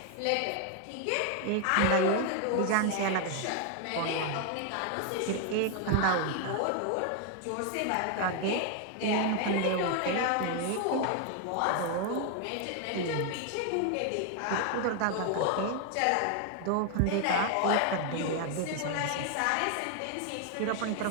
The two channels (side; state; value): both; different; correlation 0.01